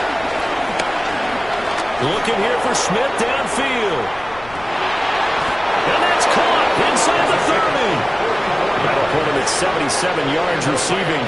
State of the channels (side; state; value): left; noise; rumble, 19 dB below the sound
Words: Looking here for Smith downfield. And that's caught inside the 30. That'll put him at 77 yards receiving